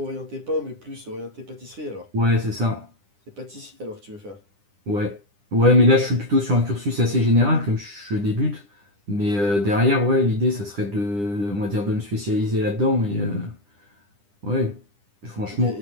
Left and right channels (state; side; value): late; left; 9.9 ms